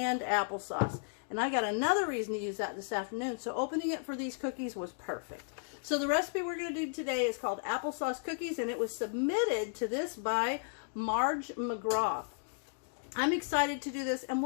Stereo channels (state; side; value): silent; right; digital silence